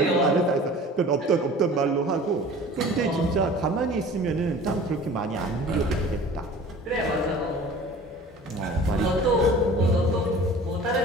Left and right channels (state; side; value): normal; both; correlation 0.43